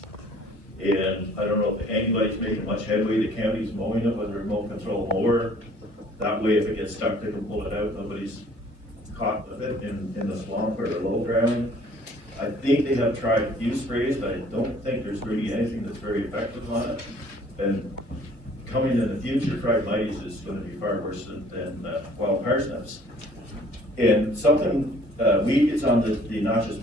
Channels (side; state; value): right; late; 1.8 ms